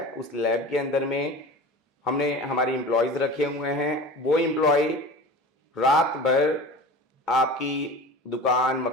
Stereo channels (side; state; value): both; normal; correlation 0.35